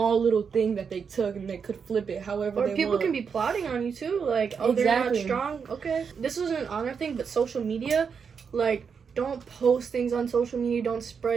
little thing that they took and they could flip it however Or they people want. can be plotting on you too, like, oh, Exactly. they're not strong. Okay, this isn't an honor thing, but social media, like, don't post things on social media, don't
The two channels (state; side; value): quieter; left; 6.2 dB